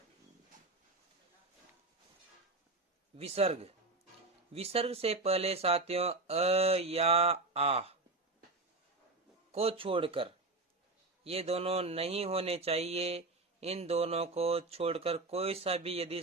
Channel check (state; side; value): quieter; left; 3.2 dB